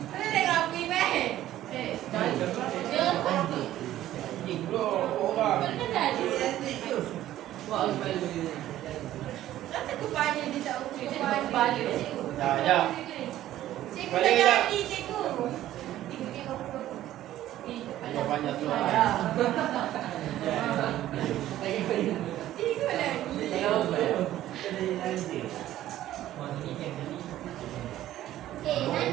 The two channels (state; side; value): quieter; left; 13.5 dB